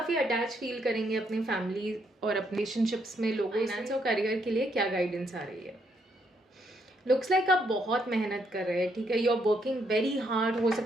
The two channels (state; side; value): normal; both; correlation 0.74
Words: attach feel करेंगे अपनी family और अपने relationships में लोगों। Finance और career के लिए क्या गाइडेंस आ रही है? लुक्स लाइक आप बहुत मेहनत कर रहे हैं, ठीक है, you are working very hard. हो